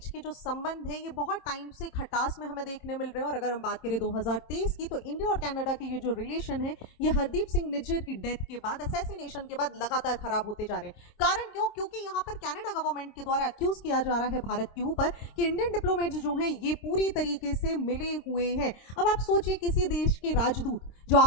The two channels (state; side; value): late; right; 26 ms